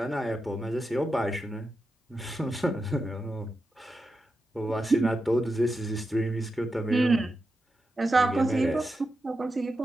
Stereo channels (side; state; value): both; normal; correlation 0.89